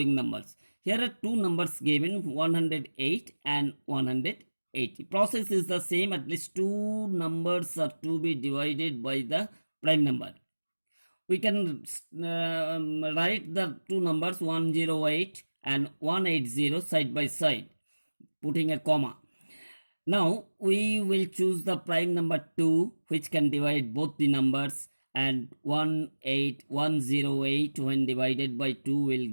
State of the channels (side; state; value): both; inverted; correlation -1.00